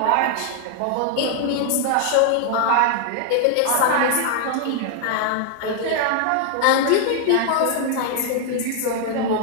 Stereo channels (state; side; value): different; both; correlation 0.00